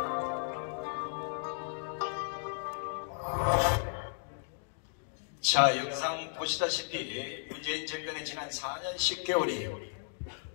자, 영상 보시다시피 문재인 정권의 지난 4년 10개월이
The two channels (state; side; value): silent; right; digital silence